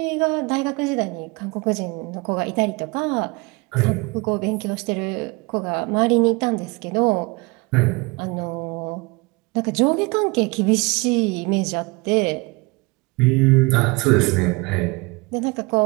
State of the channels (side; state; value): left; quieter; 26.3 dB